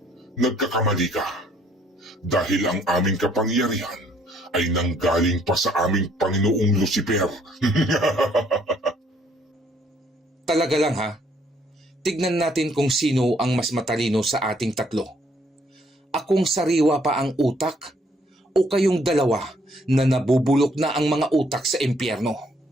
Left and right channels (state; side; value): normal; both; correlation 0.66